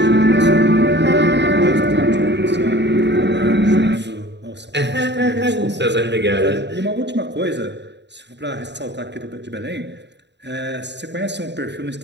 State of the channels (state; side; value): late; left; 0.51 ms